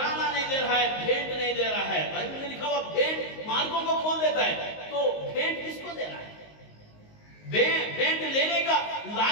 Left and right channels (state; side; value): late; right; 19 ms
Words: नहीं दे रहा है, भेंट नहीं दे रहा है। बाइबल में लिखा हुआ भेंट मार्गों को खोल देता है, तो भेंट किसको देना है? भेंट लेने का